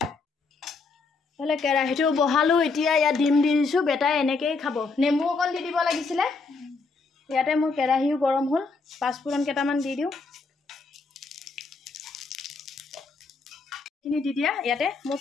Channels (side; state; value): right; quieter; 4.2 dB